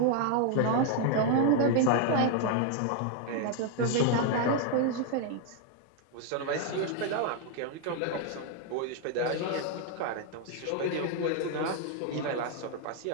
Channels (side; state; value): both; different; correlation 0.00